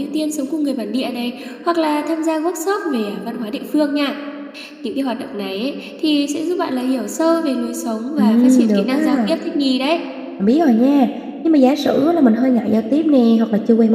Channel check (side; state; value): both; identical; correlation 1.00